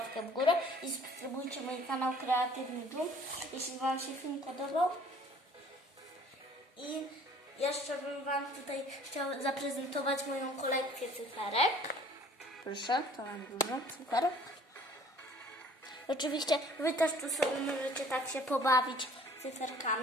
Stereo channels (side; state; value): both; normal; correlation 0.53